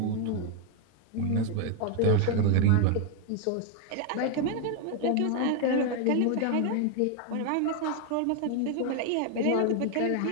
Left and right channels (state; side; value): different; both; correlation 0.01